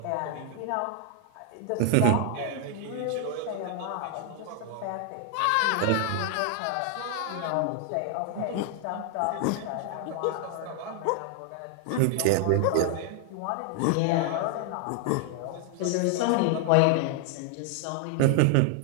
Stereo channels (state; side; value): different; both; correlation 0.00